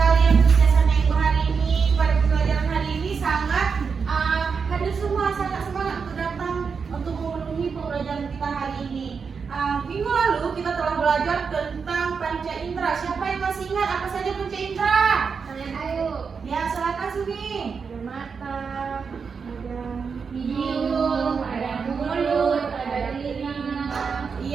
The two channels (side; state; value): left; quieter; 5.7 dB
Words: yang kebiasaan Ibu hari ini. Pada pembelajaran hari ini sangat hadir semua, sangat semangat untuk datang untuk memenuhi pembelajaran kita hari ini. Minggu lalu kita telah belajar tentang panca indera. Siapa yang masih ingat apa saja panca indera? Ayo. Ya, silakan Sumi. Ada mata, ada hidung, ada mulut, ada telinga.